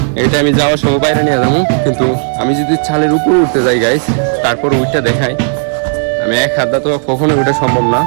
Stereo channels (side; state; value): left; silent; digital silence